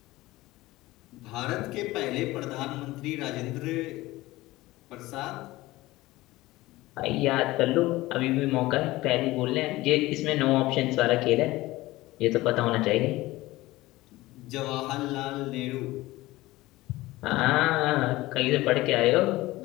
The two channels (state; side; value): quieter; right; 18.7 dB